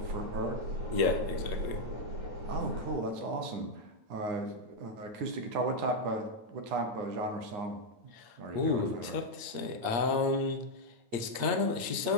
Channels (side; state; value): left; late; 8.6 ms